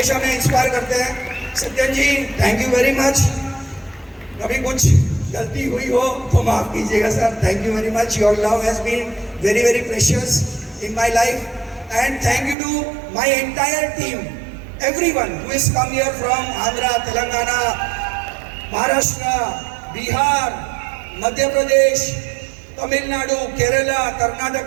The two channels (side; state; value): left; drops out; at 12.6 s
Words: हमें इंस्पायर करते हैं। Satyan ji, thank you very much. कभी कुछ गलती हुई हो तो माफ कीजिएगा sir. Thank you very much, your love has been very very precious in my life, and thank you to my entire team, everyone who has come here from Andhra, Telangana, Maharashtra, Bihar, Madhya Pradesh, Tamil Nadu, Kerala,